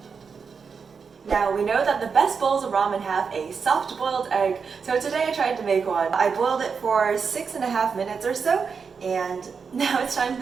Now we know that the best bowls of ramen have a soft boiled egg, so today I tried to make one. I boiled it for 6.5 minutes or so, and now it's time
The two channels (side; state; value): left; quieter; 5.7 dB